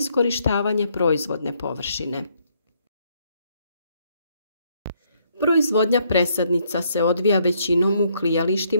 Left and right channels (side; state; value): both; inverted; correlation -0.71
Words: proizvodne površine. Proizvodnja presadnica se odvija većinom u